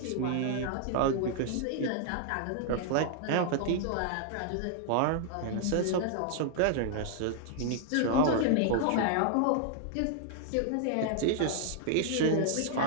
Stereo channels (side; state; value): both; different; correlation -0.01